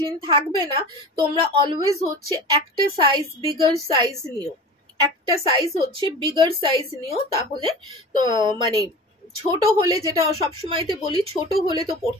থাকবে না। তোমরা অলওয়েজ হচ্ছে একটা সাইজ বিগার সাইজ নিও, একটা সাইজ হচ্ছে বিগার সাইজ নিও, তাহলে তো মানে ছোট হলে, যেটা সবসময়তে বলি, ছোট হলে তো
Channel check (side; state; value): both; normal; correlation 0.35